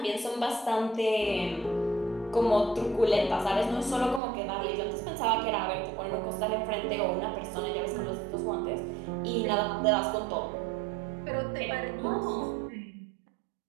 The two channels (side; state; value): left; drops out; at 4.2 s